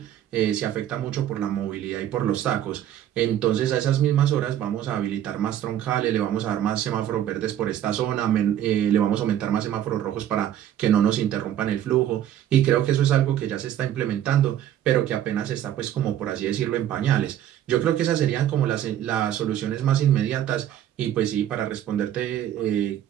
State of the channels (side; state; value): left; quieter; 11.2 dB